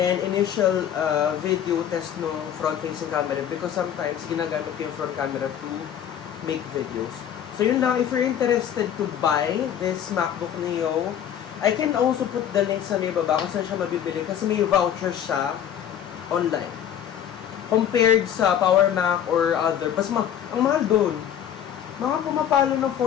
initial video test ng front-facing camera because sometimes ginagamit ko yung front camera to make videos. So yun lang, if you're interested to buy this MacBook Neo, I can also put the link sa may baba kung saan siya mabibili kasi may voucher siya online. Compared sa Power Mac or other, ang mahal doon. Mga pumapalo ng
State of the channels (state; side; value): quieter; right; 9.6 dB